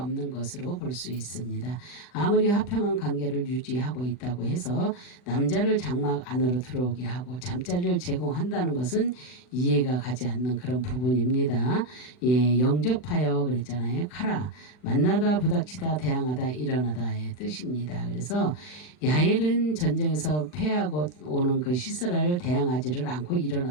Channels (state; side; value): late; right; 40 ms